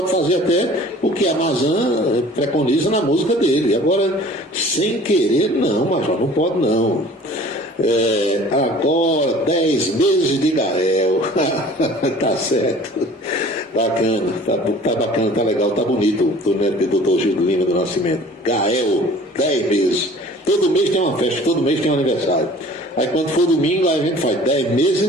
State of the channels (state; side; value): normal; both; correlation 0.47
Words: fazer até o que a Mazan preconiza na música dele. Agora, sem querer, não, Major, não pode não. Agora, 10 meses de Gael. Tá certo. Bacana, tá bacana, tá legal, tá bonito o neto do Dr. Gil do Lima do Nascimento. Gael, 10 meses. Todo mês tem uma festa, todo mês tem um aniversário. Aí quando for domingo, aí a gente faz 10 meses e